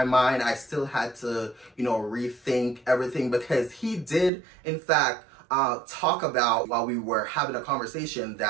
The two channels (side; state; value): left; drops out; at 4.3 s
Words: mind. I still had to, you know, rethink everything because he did, in fact, talk about while we were having a conversation